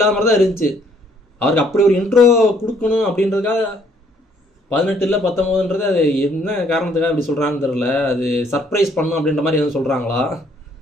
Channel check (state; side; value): normal; both; correlation 0.65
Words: மாதிரி தான் இருந்துச்சு. அவருக்கு அப்படி ஒரு இன்ட்ரோ கொடுக்கணும் அப்படின்றதுக்காக 18 இல்லை 19ன்றது அது என்ன காரணத்துக்காக அப்படி சொல்கிறான்னு தெரில. அது சர்ப்ரைஸ் பண்ணும் அப்படின்ற மாதிரி எதுவும் சொல்கிறாங்களா,